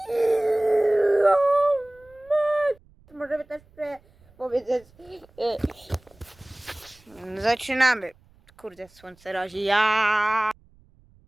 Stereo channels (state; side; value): noise; right; rumble, 30 dB below the sound